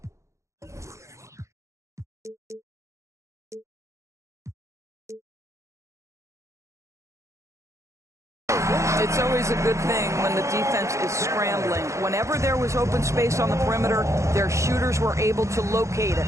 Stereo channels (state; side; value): late; left; 0.14 ms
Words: It's always a good thing when the defense is scrambling. Whenever there was open space on the perimeter, their shooters were able to locate it.